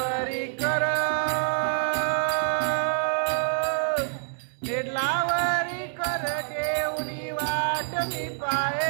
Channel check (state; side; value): silent; left; digital silence